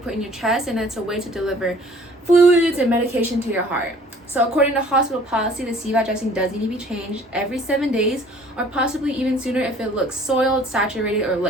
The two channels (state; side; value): normal; both; correlation 0.53